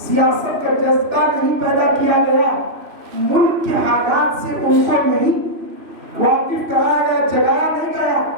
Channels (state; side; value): late; left; 3.0 ms